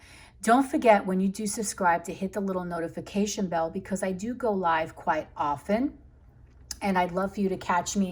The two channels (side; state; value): both; identical; correlation 1.00